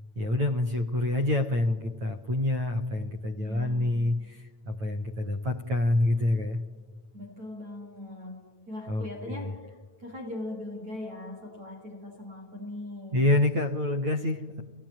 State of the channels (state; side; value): late; left; 9.0 ms